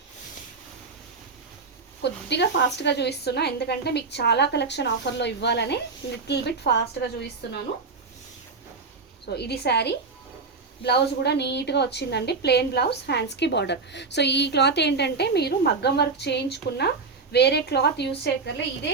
కొద్దిగా ఫాస్ట్గా చూపిస్తున్నా ఎందుకంటే మీకు చాలా కలెక్షన్ ఆఫర్లో ఇవ్వాలని లిటిల్ బిట్ ఫాస్ట్గా చూపిస్తున్నాను. సో ఇది శారీ. బ్లౌజ్ కూడా నీట్గా వచ్చిందండి, ప్లెయిన్ బ్లౌజ్, హ్యాండ్స్కి బార్డర్. సో ఈ క్లాత్ ఏంటంటే మీరు మగ్గం వర్క్ చేయించుకున్న వేరే క్లాత్ యూస్ చేయక్కర్లే, ఇదే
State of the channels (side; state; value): left; quieter; 4.3 dB